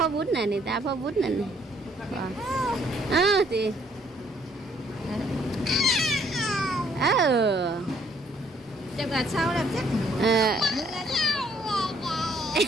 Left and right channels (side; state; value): both; normal; correlation 0.66